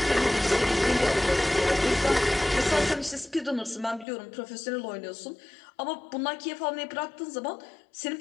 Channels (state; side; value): drops out; right; at 4.0 s